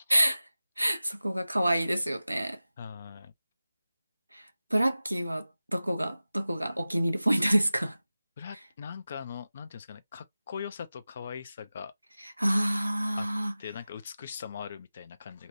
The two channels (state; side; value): inverted; both; correlation -0.96